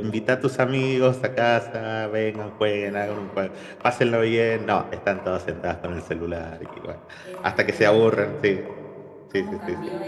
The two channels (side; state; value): both; identical; correlation 1.00